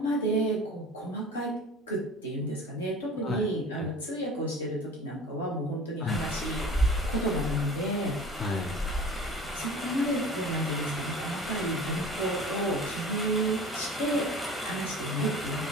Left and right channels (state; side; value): normal; both; correlation 0.40